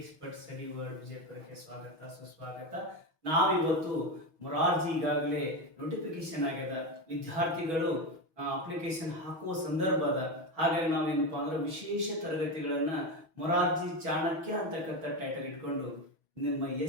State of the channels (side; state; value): left; late; 6.2 ms